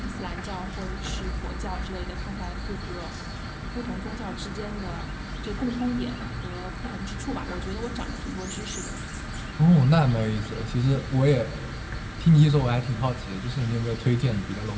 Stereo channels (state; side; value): identical; both; correlation 1.00